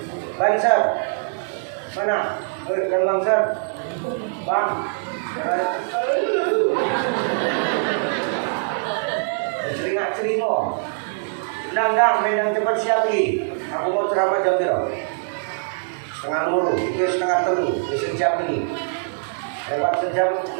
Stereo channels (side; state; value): left; silent; digital silence